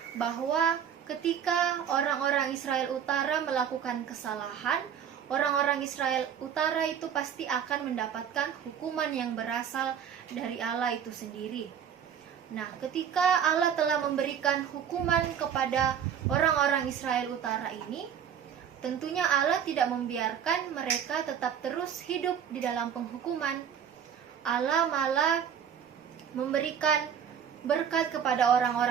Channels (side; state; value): left; quieter; 8.3 dB